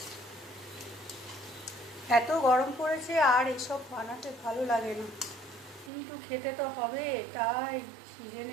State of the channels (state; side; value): drops out; left; at 5.9 s